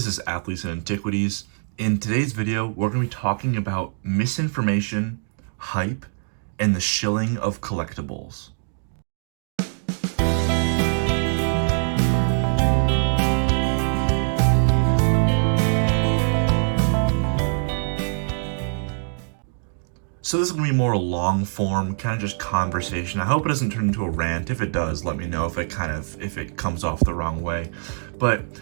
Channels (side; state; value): left; silent; 63 dB below the other